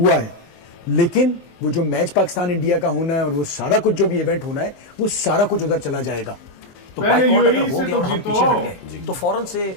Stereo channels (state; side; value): late; right; 23 ms